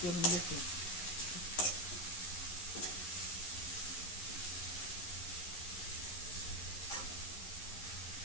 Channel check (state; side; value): late; right; 11 ms